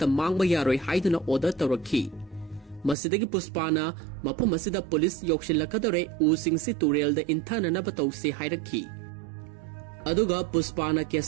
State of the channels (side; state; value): left; drops out; at 3.0 s